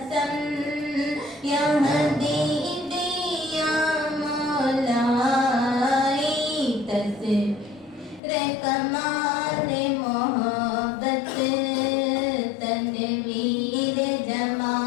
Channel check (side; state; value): right; drops out; at 8.2 s